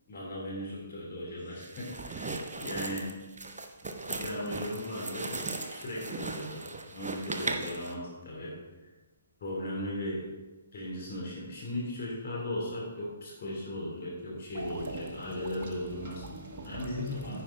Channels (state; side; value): inverted; both; correlation -0.55